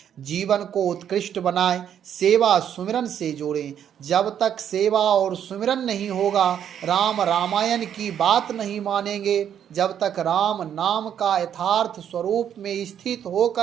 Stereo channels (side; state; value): left; quieter; 9.3 dB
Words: जीवन को उत्कृष्ट बनाएं, सेवा सुमिरन से जोड़ें। जब तक सेवा और सुमिरन नहीं होगा, राम रामायण की बात नहीं मानेंगे, जब तक राम नाम का यथार्थ स्वरूप में स्थित